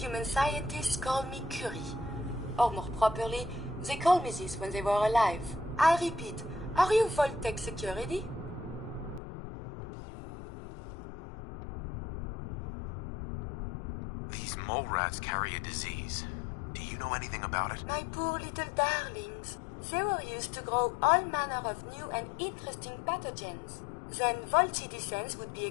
scientists call me Curie. Or more properly, they called me this when they were alive. I repeat, are you Vault-Tec security? These mole rats carry a disease. Do you know anything about it? My poor little darlings. They were used to grow all manner of new and interesting pathogens. Then Vault citizens would be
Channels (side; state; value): right; drops out; at 9.2 s